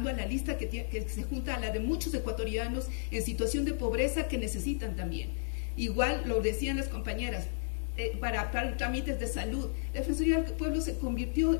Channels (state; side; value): silent; right; digital silence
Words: a la lista que se junta a la de muchos ecuatorianos en situación de pobreza que necesitan también. Igual lo decían las compañeras, para trámites de salud. La Defensoría del Pueblo se convirtió